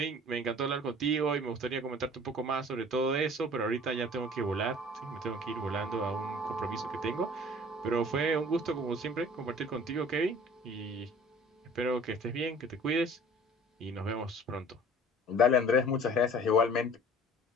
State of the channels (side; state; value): both; normal; correlation 0.48